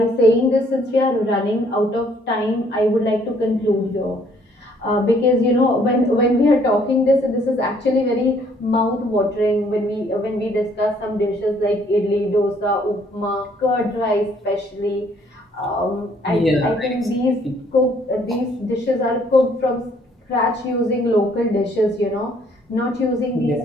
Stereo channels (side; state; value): both; normal; correlation 0.63